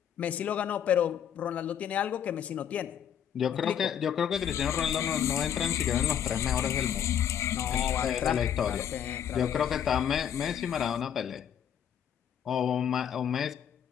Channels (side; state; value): right; quieter; 9.2 dB